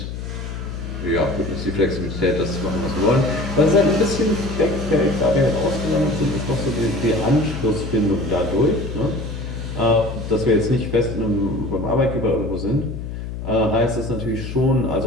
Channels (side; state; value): left; noise; hum, 7 dB below the sound